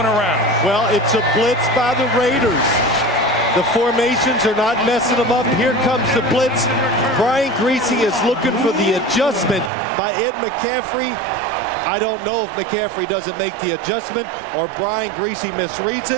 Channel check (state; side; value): drops out; left; at 9.7 s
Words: around. Well, it's a blitz by the Raiders. The formations are not messing them up. Here comes the blitz. Brian Greasy is looking for the adjustment by Ed McCaffrey. I don't know if McCaffrey doesn't make the adjustment or Brian Greasy misreads